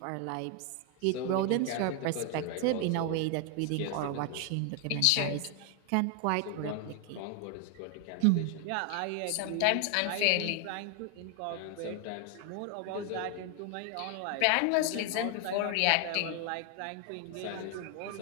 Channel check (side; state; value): both; different; correlation 0.01